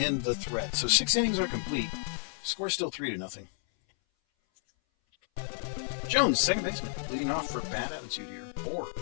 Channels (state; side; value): silent; right; 57 dB below the other